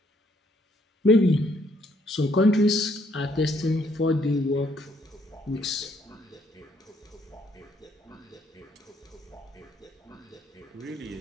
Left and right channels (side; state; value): both; normal; correlation 0.69